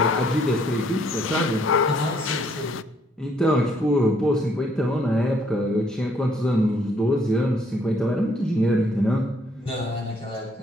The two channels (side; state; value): both; normal; correlation 0.67